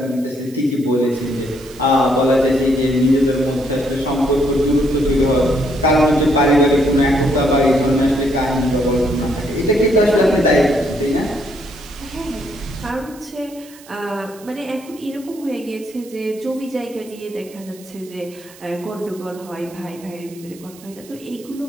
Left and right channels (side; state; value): right; noise; hiss, 22 dB below the sound